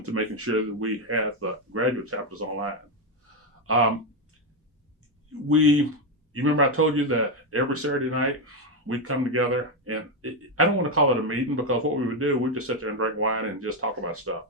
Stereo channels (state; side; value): normal; both; correlation 0.06